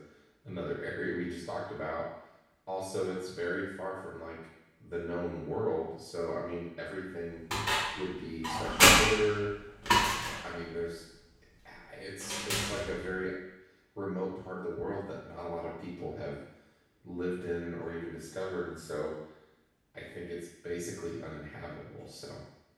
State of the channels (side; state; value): both; identical; correlation 1.00